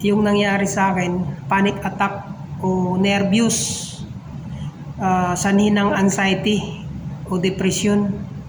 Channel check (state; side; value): identical; both; correlation 1.00